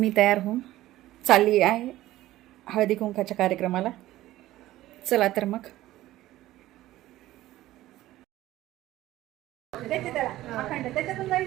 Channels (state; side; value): quieter; left; 15.5 dB